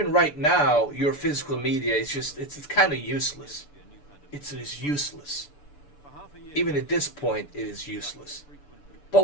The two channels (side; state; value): right; late; 6.9 ms